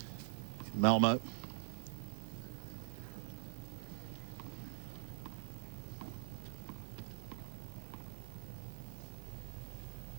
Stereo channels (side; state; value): left; silent; digital silence